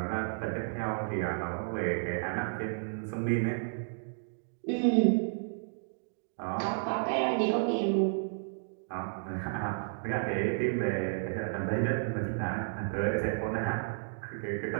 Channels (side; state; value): left; silent; digital silence